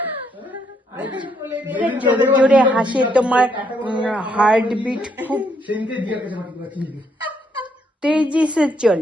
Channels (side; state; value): both; normal; correlation 0.73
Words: জোরে জোরে হাসে, তোমার हार्टबीट खूब সেদিনকে দিয়ার কাছে মাটি করে কিনে দিই। तेजी से